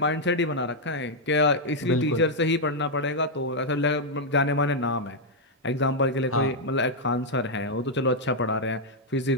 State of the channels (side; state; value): both; normal; correlation -0.02